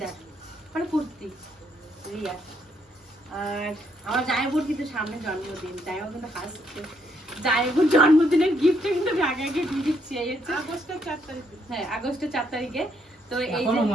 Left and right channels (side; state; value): both; normal; correlation 0.73